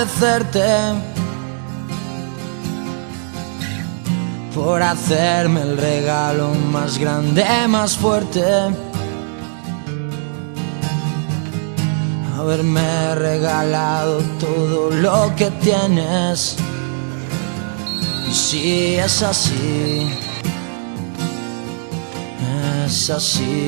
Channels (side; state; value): left; silent; 67 dB below the other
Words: por hacerme el regalo más grande, más fuerte. Haberme regalado todo lo que tienes. Y si es así, es